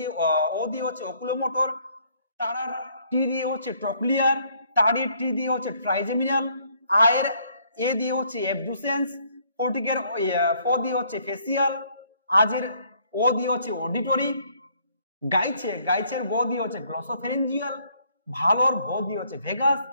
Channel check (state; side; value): inverted; both; correlation -0.66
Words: ও দিয়ে হচ্ছে অকুলোমোটর। তারার টি দিয়ে হচ্ছে ট্রক্লিয়ার। তারির টি দিয়ে হচ্ছে ট্রাইজেমিনাল। আয়ের এ দিয়ে হচ্ছে অ্যাবডুসেন্স। ফটিকের ফ দিয়ে হচ্ছে ফেসিয়াল। আজের ও দিয়ে হচ্ছে অডিটরি। গাইছের গ দিয়ে হচ্ছে গ্লসোফেরেঞ্জিয়াল। ভালোর ভ দিয়ে হচ্ছে ভেগাস।